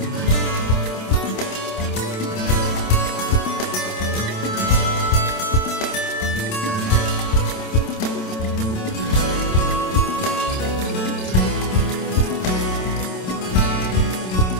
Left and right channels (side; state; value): right; late; 27 ms